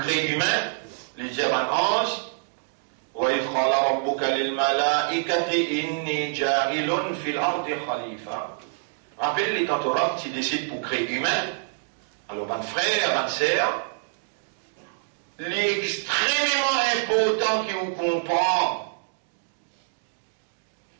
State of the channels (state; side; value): silent; left; digital silence